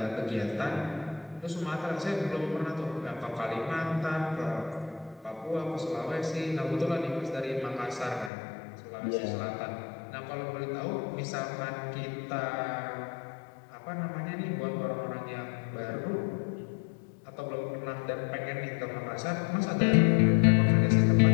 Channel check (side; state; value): right; drops out; at 8.3 s